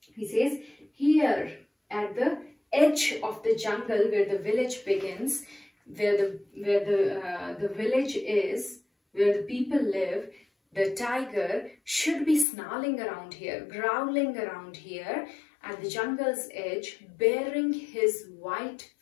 he says here at the edge of the jungle where the village begins, where the village is, where the people live, the tiger should be snarling around here, growling around here at the jungle's edge, baring his white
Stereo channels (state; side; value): drops out; right; at 12.5 s